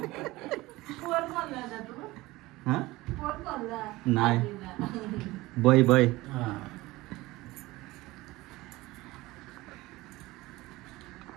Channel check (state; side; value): quieter; left; 19.7 dB